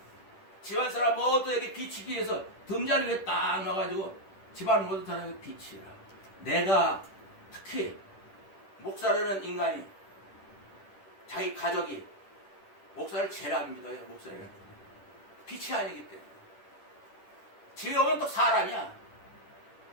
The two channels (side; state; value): right; late; 10 ms